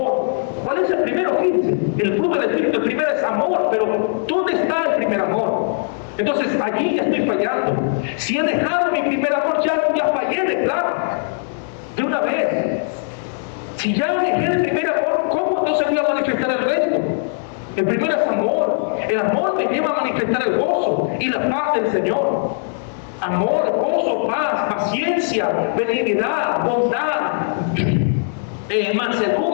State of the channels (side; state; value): right; silent; digital silence